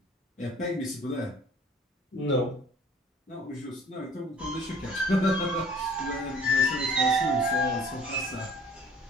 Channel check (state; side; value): normal; both; correlation 0.51